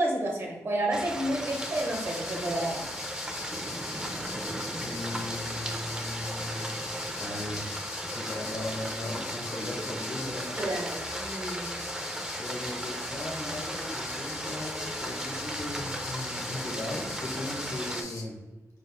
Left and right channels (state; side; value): normal; both; correlation 0.68